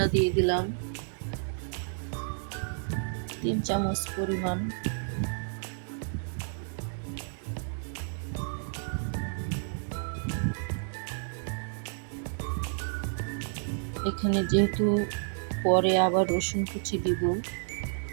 দিয়ে দিলাম 3 চামচ পরিমাণ। এখানে যেহেতু পরে আবার রসুন কুচি দিব,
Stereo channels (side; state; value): left; silent; digital silence